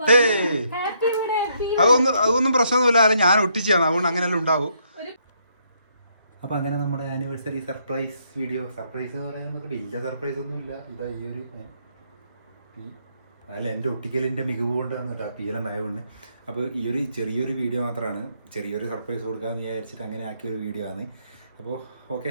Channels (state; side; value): inverted; both; correlation -0.72